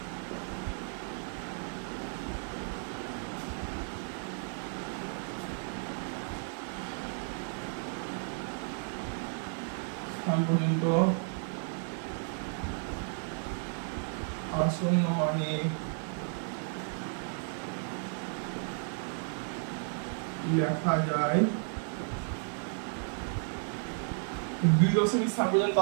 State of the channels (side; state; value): left; silent; 56 dB below the other